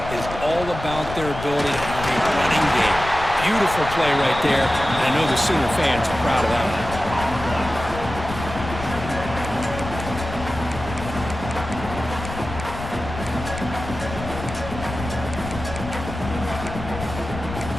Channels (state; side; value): noise; left; rumble, 9 dB below the sound